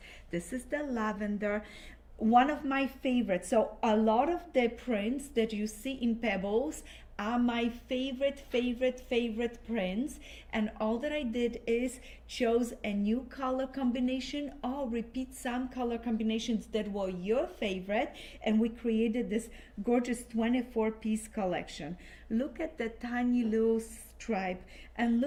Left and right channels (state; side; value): identical; both; correlation 1.00